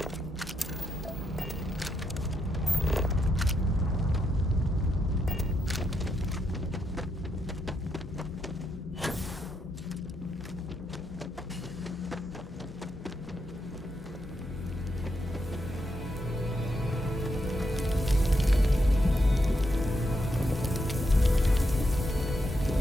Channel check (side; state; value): both; normal; correlation 0.81